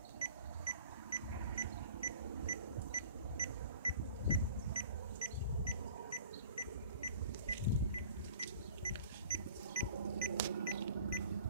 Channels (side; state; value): both; inverted; correlation -0.46